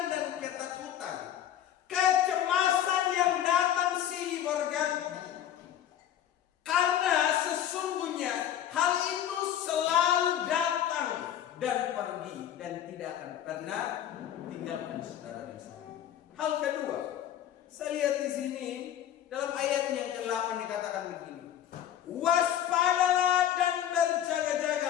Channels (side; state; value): right; quieter; 10.8 dB